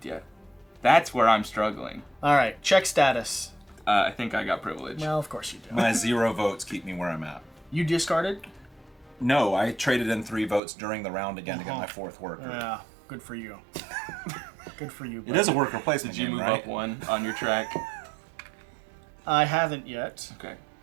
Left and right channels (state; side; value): drops out; left; at 10.6 s